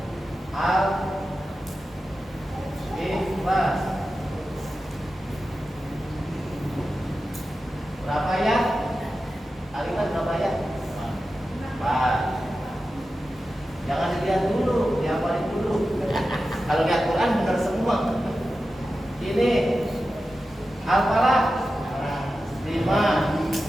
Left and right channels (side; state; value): both; normal; correlation 0.92